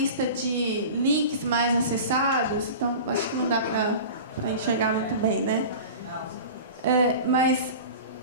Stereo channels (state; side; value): inverted; both; correlation -0.34